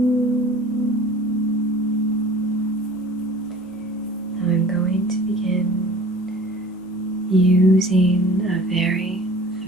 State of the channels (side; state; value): both; normal; correlation 0.46